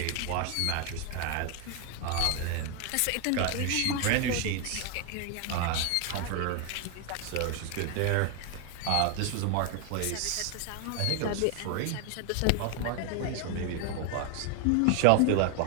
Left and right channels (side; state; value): both; different; correlation 0.00